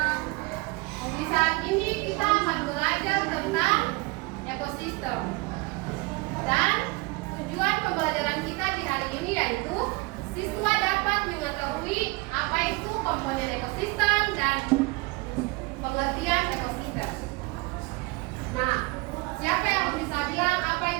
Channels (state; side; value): quieter; left; 24.6 dB